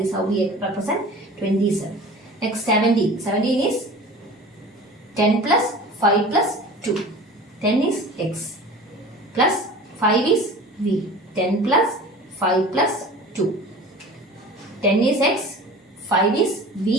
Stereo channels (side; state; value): both; normal; correlation 0.40